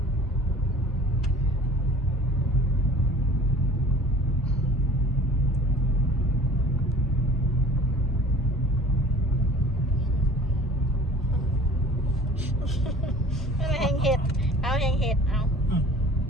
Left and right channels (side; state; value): both; normal; correlation 0.47